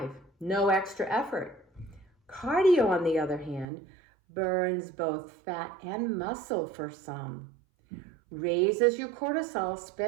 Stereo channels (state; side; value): drops out; left; at 3.7 s